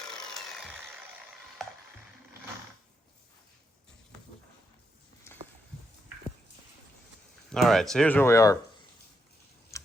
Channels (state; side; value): normal; both; correlation 0.82